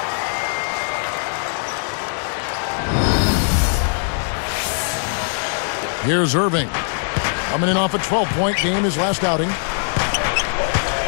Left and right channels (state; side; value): silent; right; digital silence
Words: Here's Irving. Coming in off a 12-point game his last outing.